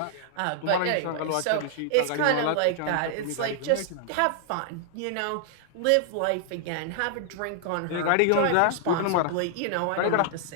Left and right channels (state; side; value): different; both; correlation -0.01